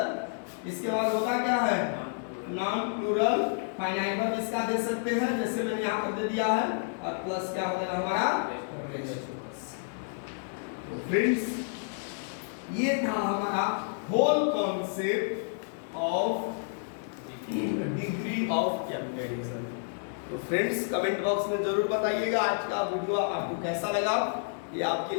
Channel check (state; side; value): silent; right; digital silence